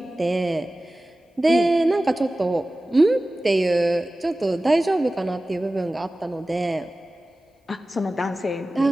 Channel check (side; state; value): both; normal; correlation 0.96